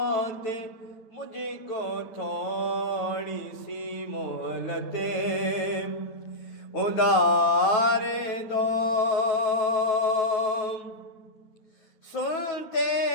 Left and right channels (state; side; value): late; right; 9.1 ms